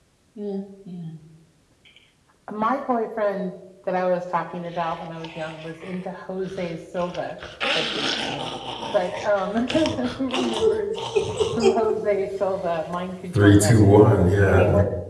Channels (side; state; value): both; identical; correlation 1.00